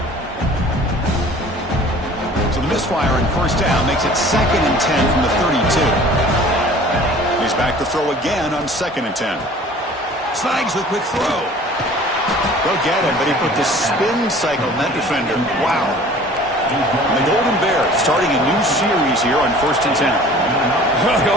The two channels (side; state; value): both; normal; correlation 0.47